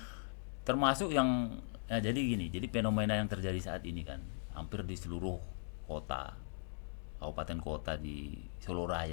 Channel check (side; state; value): right; silent; digital silence